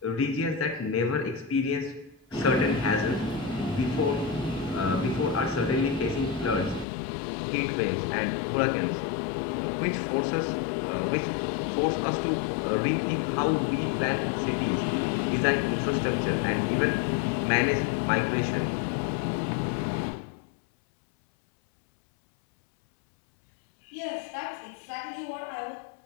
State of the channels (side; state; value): right; drops out; at 6.9 s